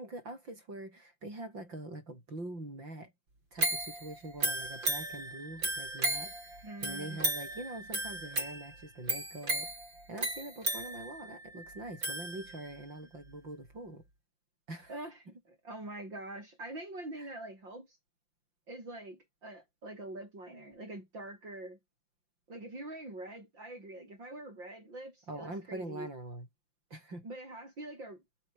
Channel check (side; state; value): left; late; 5.8 ms